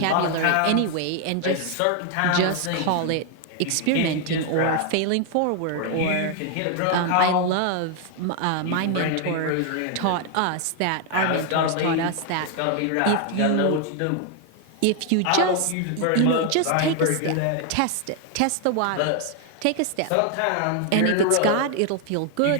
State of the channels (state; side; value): different; both; correlation 0.00